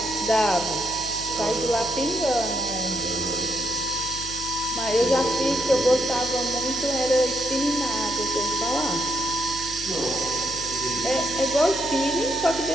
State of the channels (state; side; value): noise; left; hum, 14 dB below the sound